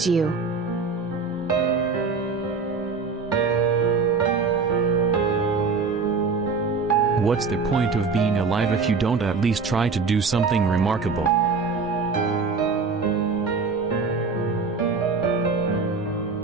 you. What's the point of being alive if you don't at least try to do something remarkable?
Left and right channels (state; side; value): quieter; left; 4.7 dB